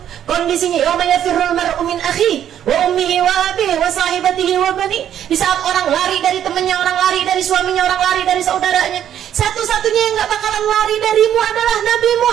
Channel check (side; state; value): left; quieter; 10.3 dB